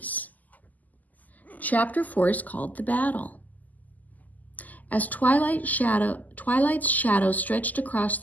Chapter 4 is called The Battle. As Twilight's shadow stretched across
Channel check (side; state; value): right; late; 0.080 ms